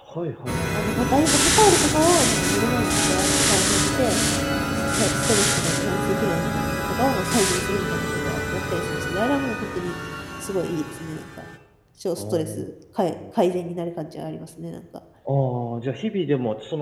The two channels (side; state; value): both; identical; correlation 1.00